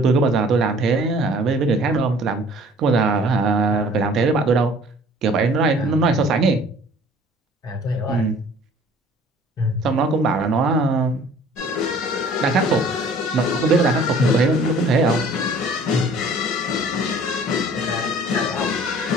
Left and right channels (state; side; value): normal; both; correlation 0.51